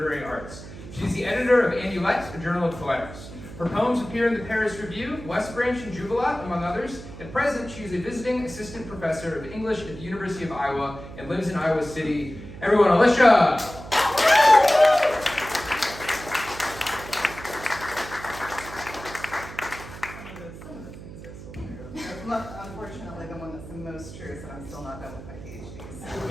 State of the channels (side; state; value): right; noise; hum, 14 dB below the sound